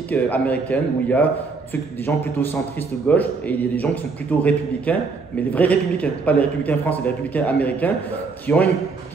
américaine, où il y a des gens plutôt centristes gauche et il y a des gens qui sont plutôt républicains, mais les vrais républicains, pas les républicains français, les républicains américains, qui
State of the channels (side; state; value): left; quieter; 4.4 dB